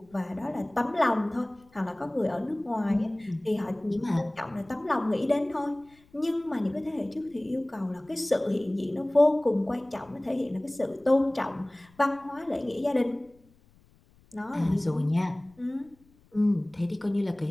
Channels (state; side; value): noise; left; rumble, 30 dB below the sound